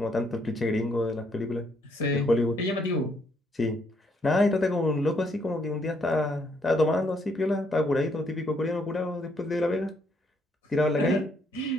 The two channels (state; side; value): normal; both; correlation 0.71